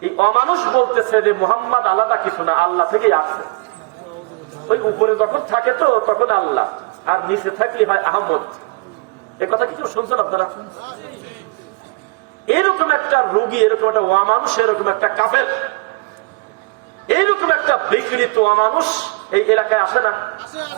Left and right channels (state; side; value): quieter; left; 27.1 dB